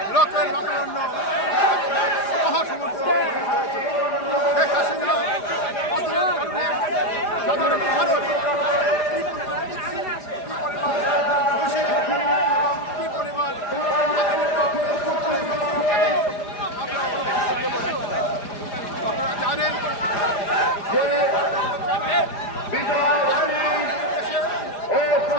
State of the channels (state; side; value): late; right; 4.9 ms